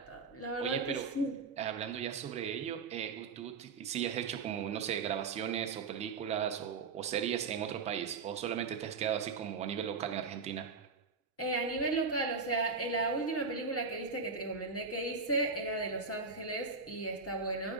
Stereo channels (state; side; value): quieter; left; 4.7 dB